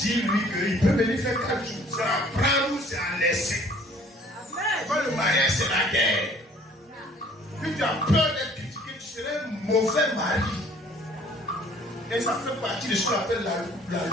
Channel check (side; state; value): both; normal; correlation 0.55